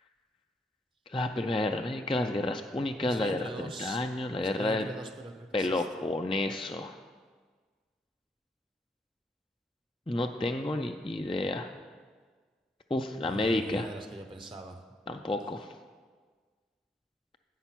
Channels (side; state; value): both; normal; correlation 0.74